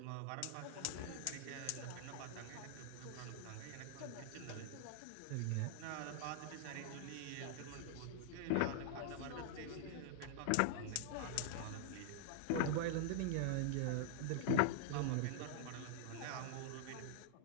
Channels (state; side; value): different; both; correlation 0.00